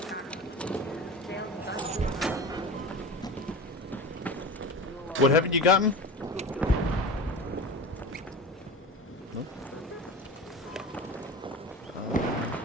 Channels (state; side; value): normal; both; correlation 0.31